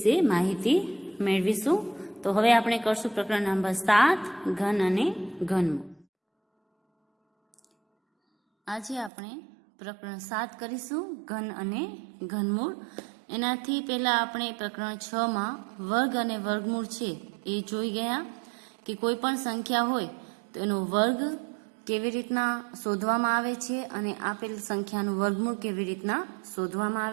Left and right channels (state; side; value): drops out; left; at 9.1 s